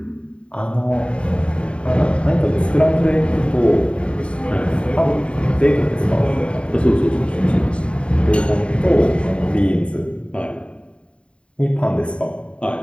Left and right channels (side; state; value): right; late; 0.058 ms